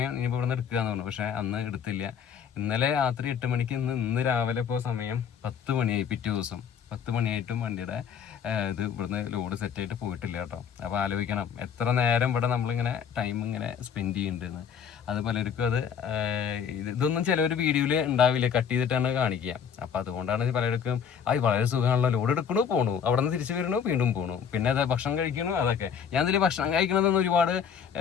ഇനിയിപ്പോൾ ഇവിടെ നിന്ന് എടുക്കുകയെന്ന് പറഞ്ഞു. പക്ഷേ അന്ന് എടുത്തില്ല. ഇന്നലെ രാത്രി 8 മണിക്ക്, ഇന്ന് രാവിലെ ഇപ്പോൾ സമയം 10 മണിയായി. പിറ്റേ ദിവസം 10 മണിയായിട്ടും വണ്ടിയുടെ ഇത് ഇവിടുന്ന് ലോഡ് സെറ്റായിട്ട് പോയിട്ടില്ല കേട്ടോ. അപ്പോൾ ആലോചിക്കണം എത്ര നേരം ഇവിടെ നമ്മളിങ്ങനെ ടൈം ഇങ്ങനെ സ്പെൻഡ് ചെയ്യുന്നുണ്ടെന്ന്. അത് പലർക്കും അത് ഇതൊന്നും ചിലവർ വീഡിയോയിൽ ഉണ്ടാവില്ല, കട്ട് ചെയ്തിട്ടാണ് കാണിക്കുക. അപ്പോൾ അതുകൊണ്ടാണ് പലർക്കും വളരെ സുഖമാണല്ലോ, ലോഡ് എടുക്കണു പോണു, അവിടെ നിന്ന് തിരിച്ചു വരണു, വീണ്ടും പോണു, പിന്നെ അത് ഭക്ഷണം കഴിക്കണു. അതൊക്കെ ഞാൻ ഇതിൽ ഭക്ഷണം കഴിക്കണതെന്ന് ഒരുപാട്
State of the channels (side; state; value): right; quieter; 7.6 dB